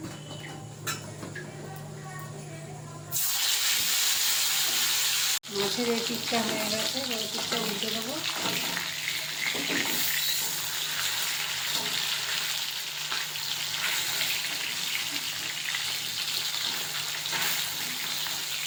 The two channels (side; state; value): both; identical; correlation 1.00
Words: মাছের এই পিঠটা হয়ে গেছে, এই পিঠটা উল্টে দেবো।